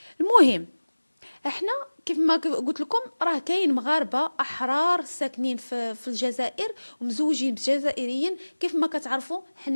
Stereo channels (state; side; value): inverted; both; correlation -1.00